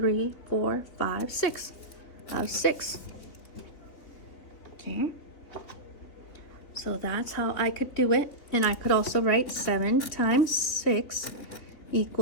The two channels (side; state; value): right; late; 3.4 ms